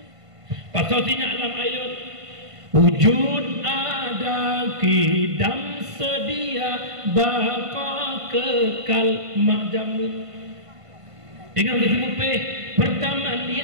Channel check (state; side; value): late; left; 1.5 ms